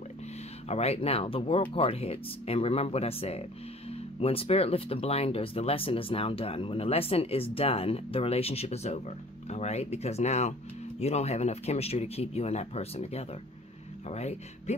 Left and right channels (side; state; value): both; normal; correlation 0.49